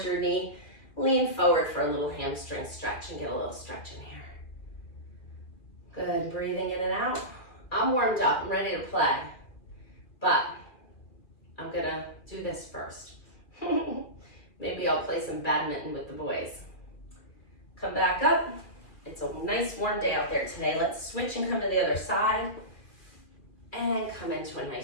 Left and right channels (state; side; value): late; right; 2.6 ms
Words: your knee, lean forward for a little hamstring stretch and get a little stretch in here. Good, breathing in and out. I'm warmed up, I'm ready to play, but I'm gonna do this first. Maybe I'll play some badminton with the boys. Come back up. It's a nice warm day out there today. Let's switch and come to the other side and come into a